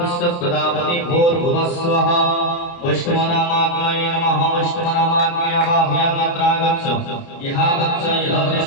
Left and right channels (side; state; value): right; late; 29 ms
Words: भूर्भुवस्वः वैष्णवनामाग्नये नमः वैष्णवनामाग्नया बाह्यामत्रागच्छ यहा गच्छ